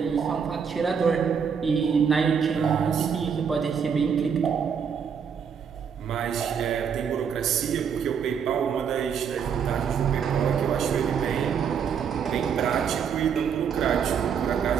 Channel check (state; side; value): quieter; left; 7.0 dB